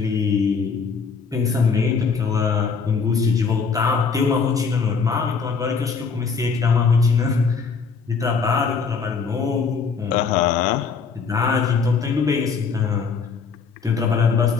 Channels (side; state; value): right; quieter; 5.4 dB